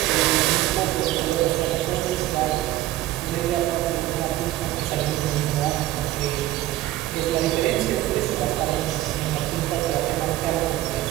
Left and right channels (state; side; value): quieter; left; 15.3 dB